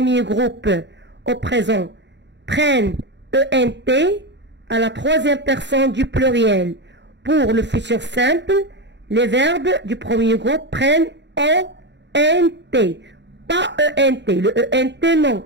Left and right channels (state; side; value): late; left; 0.52 ms